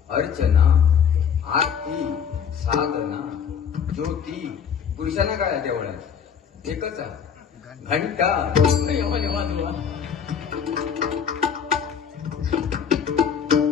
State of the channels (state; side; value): quieter; right; 7.4 dB